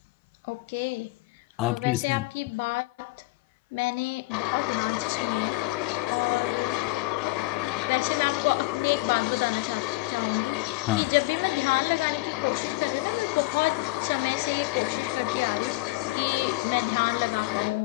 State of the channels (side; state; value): right; quieter; 21.8 dB